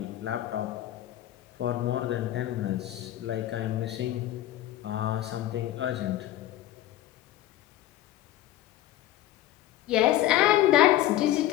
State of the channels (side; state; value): right; quieter; 13.6 dB